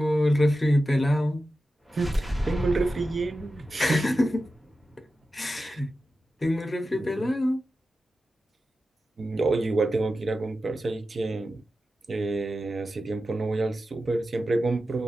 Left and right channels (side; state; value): both; normal; correlation 0.92